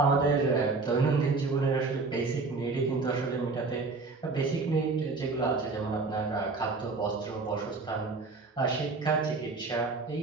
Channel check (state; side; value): quieter; left; 3.9 dB